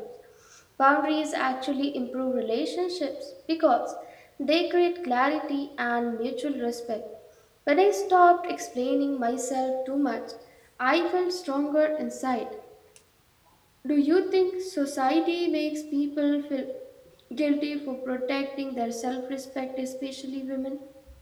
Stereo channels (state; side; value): identical; both; correlation 1.00